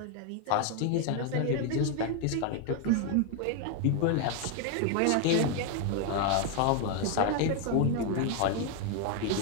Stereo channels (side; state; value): both; different; correlation 0.01